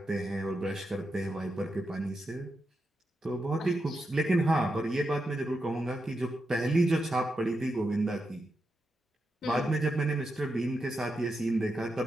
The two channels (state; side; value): normal; both; correlation 0.87